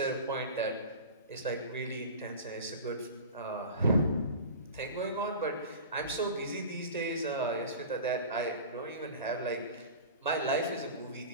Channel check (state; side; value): inverted; both; correlation -0.35